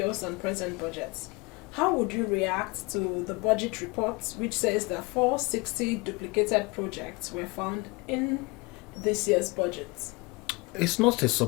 and present budgets. How would you react to the budget report, which says that 460 duplicated projects were found in this year's budget? It's not a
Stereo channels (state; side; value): quieter; right; 26.3 dB